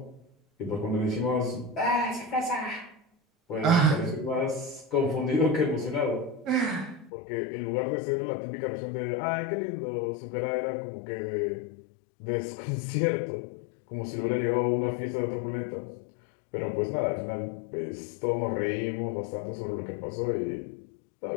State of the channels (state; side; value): drops out; right; at 7.1 s